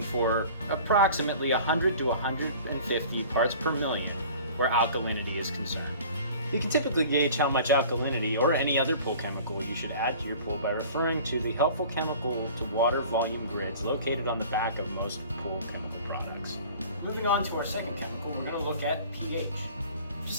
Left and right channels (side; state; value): both; inverted; correlation -0.44